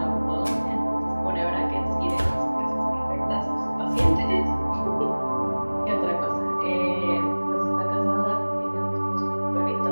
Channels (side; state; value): both; inverted; correlation -1.00